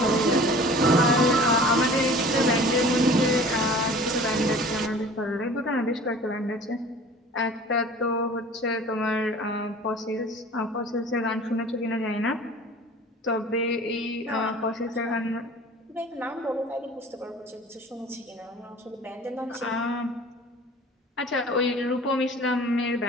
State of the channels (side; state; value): both; normal; correlation 0.44